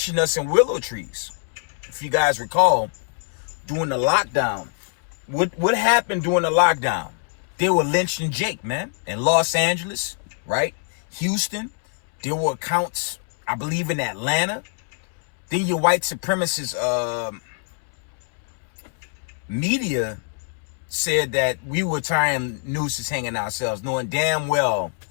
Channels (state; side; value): silent; right; 63 dB below the other